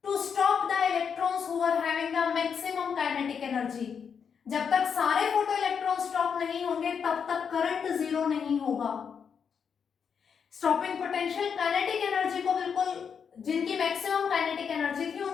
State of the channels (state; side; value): quieter; right; 6.8 dB